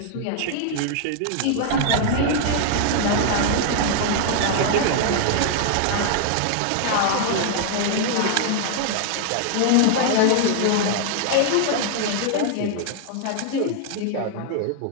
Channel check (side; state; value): both; different; correlation 0.00